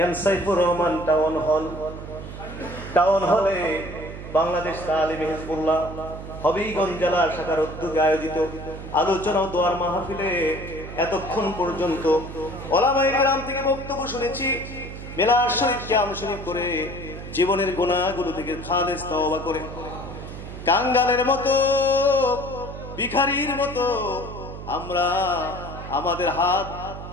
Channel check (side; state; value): right; noise; hum, 10 dB below the sound